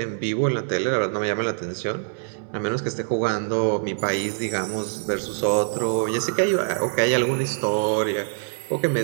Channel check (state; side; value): silent; left; digital silence